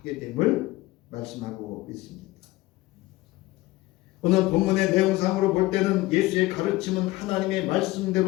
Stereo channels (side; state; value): right; quieter; 18.9 dB